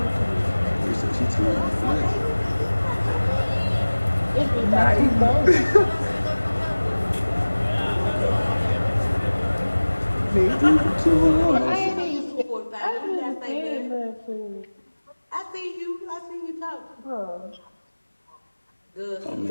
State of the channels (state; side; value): inverted; both; correlation -1.00